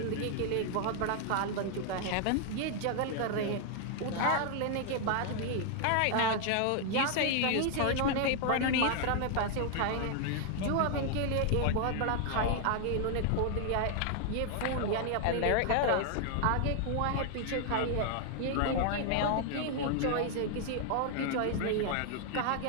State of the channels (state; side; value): different; both; correlation 0.00